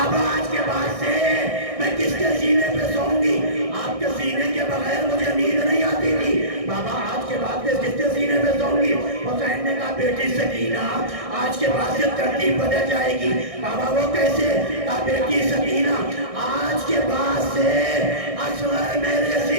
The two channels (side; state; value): left; late; 1.6 ms